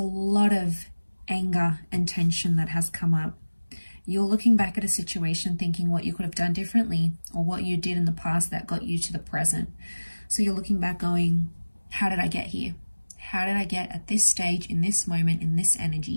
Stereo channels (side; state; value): both; inverted; correlation -1.00